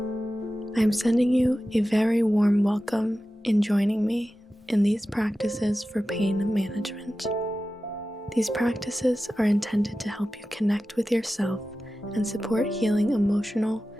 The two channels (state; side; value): normal; both; correlation 0.94